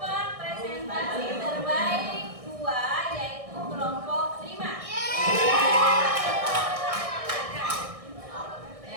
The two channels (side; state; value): left; late; 1.6 ms